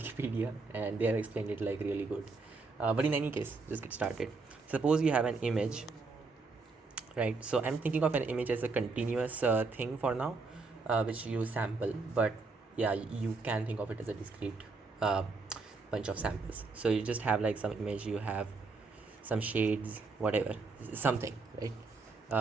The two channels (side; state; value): left; quieter; 4.0 dB